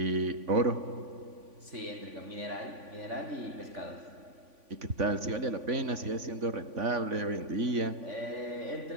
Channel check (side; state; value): left; late; 3.5 ms